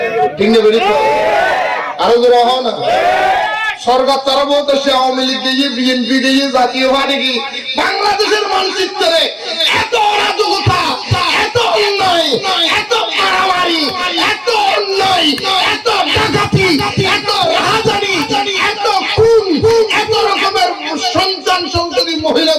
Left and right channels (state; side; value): identical; both; correlation 1.00